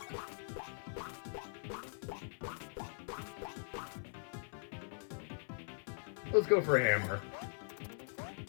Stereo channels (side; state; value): right; silent; 50 dB below the other